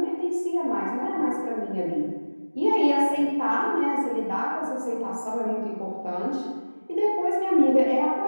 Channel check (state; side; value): inverted; both; correlation -1.00